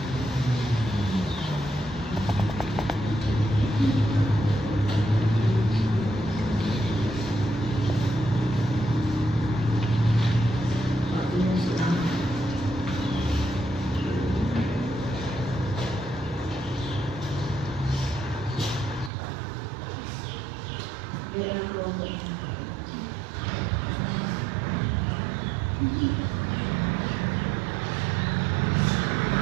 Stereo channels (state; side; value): drops out; left; at 19.1 s